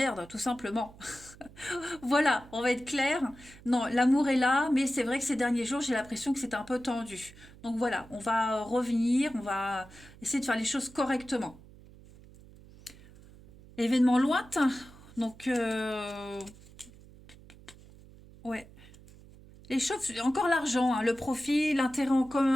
tout simplement. Voilà, on va être clair. Non, l'amour est là, mais c'est vrai que ces derniers jours, j'ai l'impression que c'est un peu tendu. Donc voilà, on va revenir, on va essayer de faire les choses correctement. Événement lointain. Donc, ouais. Les choses, encore l'argent, hein, le profit, l'intérêt en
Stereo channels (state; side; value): noise; right; hum, 21 dB below the sound